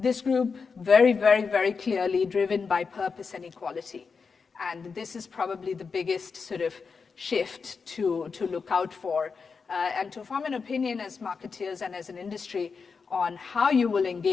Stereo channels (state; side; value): quieter; right; 5.2 dB